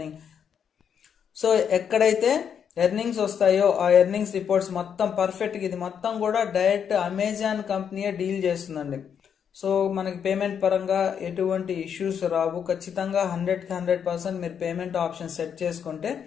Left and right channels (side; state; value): right; quieter; 7.8 dB